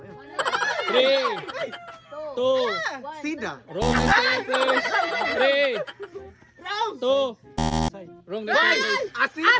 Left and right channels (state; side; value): identical; both; correlation 1.00